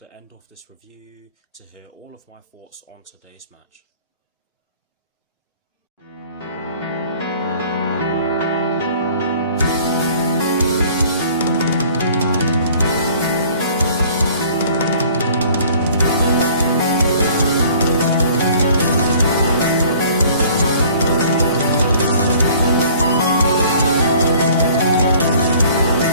end of this review to hear all of my thoughts on today's match.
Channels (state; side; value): inverted; both; correlation -0.52